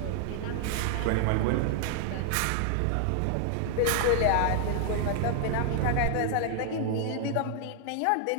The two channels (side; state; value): both; different; correlation 0.00